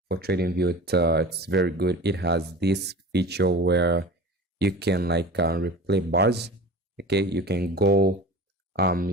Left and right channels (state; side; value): normal; both; correlation 0.36